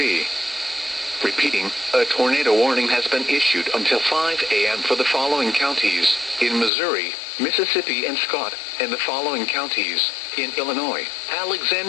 Repeating, a tornado warning has been issued until 5 a.m. for the following counties: in Missouri, Mississippi and Scott, and the following counties: in Illinois,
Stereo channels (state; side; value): drops out; right; at 6.7 s